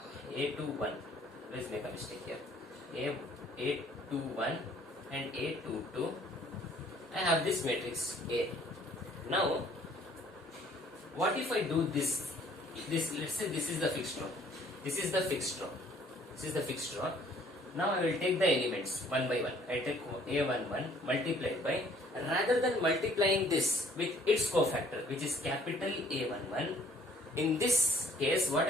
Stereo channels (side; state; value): both; normal; correlation 0.58